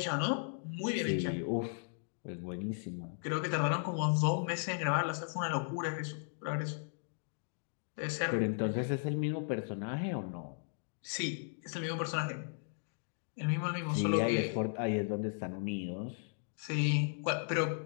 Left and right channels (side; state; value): right; silent; digital silence